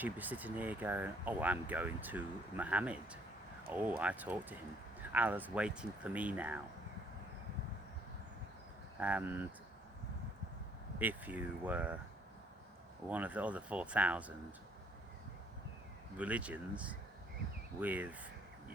be sitting here going, oh, I'm going to Muhammad. Oh, I talked to him. Allah's waiting for me now. And if you were one of the other 4,000 religions with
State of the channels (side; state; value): both; normal; correlation 0.64